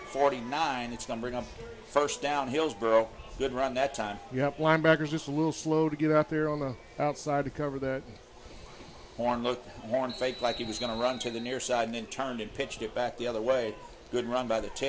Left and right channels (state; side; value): identical; both; correlation 1.00